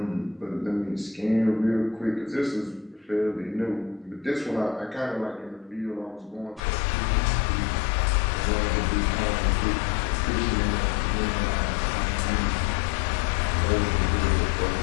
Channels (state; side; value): drops out; right; at 6.6 s